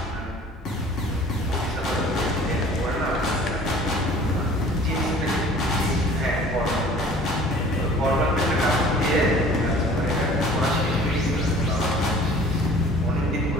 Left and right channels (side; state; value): both; normal; correlation 0.49